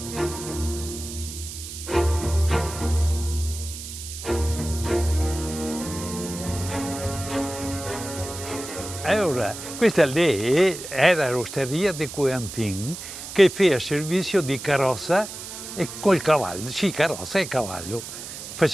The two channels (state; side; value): noise; right; hiss, 10 dB below the sound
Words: Allora, questa lì era l'osteria di Coentin che faceva servizio di carrozza e col cavallo, sì, carrozza e cavallo,